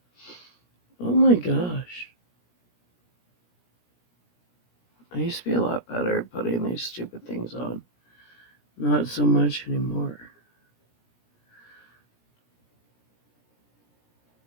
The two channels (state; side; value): late; right; 17 ms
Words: Oh my gosh. I used to be a lot better at putting these stupid things on. Not so much anymore.